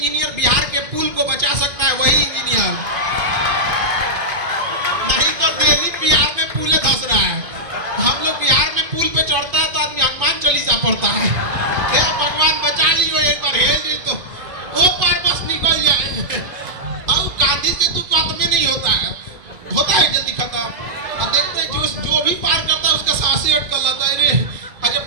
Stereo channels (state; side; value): late; left; 2.7 ms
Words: बिहार के पुल को बचा सकता है, वही इंजीनियर, नहीं तो दिल्ली बिहार में पुल धस रहा है। हम लोग बिहार में पुल पे चढ़ता है तो आदमी हनुमान चालीसा पढ़ता है, भगवान बचा लियो एक बार, हेल जी तो वो पार बस निकल जाए। और गांधी से तो बात में नहीं होता है, होता है जल्दी खत्म। और देखते हैं जो भी पार करता है उसका सांसें अटक जाता है, रे जब